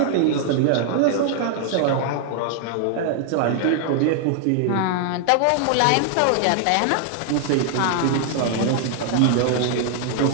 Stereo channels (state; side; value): different; both; correlation 0.00